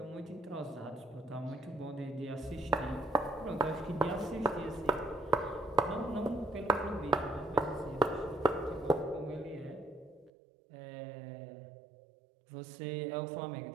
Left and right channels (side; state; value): left; drops out; at 10.3 s